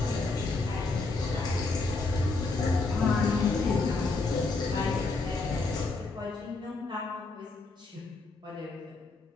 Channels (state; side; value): quieter; right; 3.6 dB